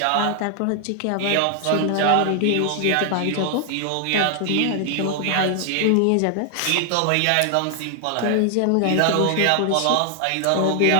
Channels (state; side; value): different; both; correlation 0.00